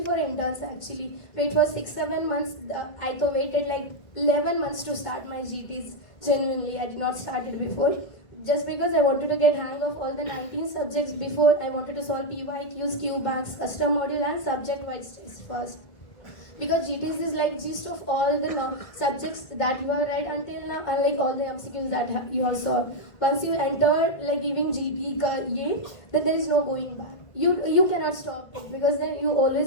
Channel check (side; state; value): right; late; 2.1 ms